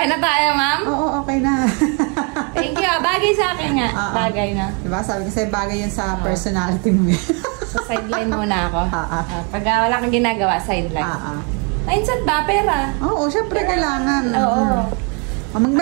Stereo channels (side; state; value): left; quieter; 35.3 dB